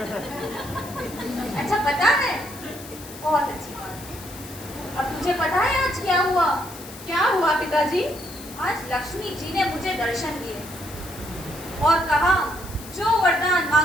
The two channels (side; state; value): left; noise; hiss, 16 dB below the sound